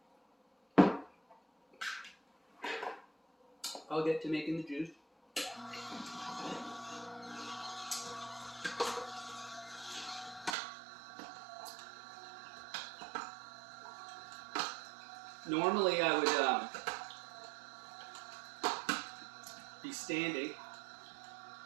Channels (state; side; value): drops out; left; at 10.6 s